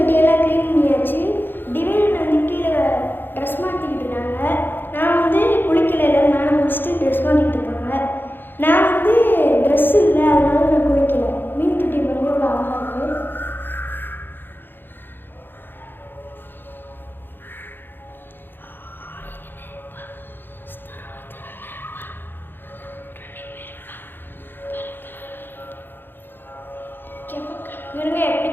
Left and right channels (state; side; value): late; right; 0.098 ms